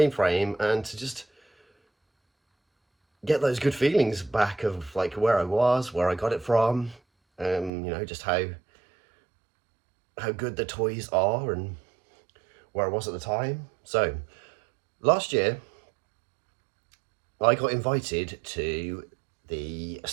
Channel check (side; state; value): left; drops out; at 7.7 s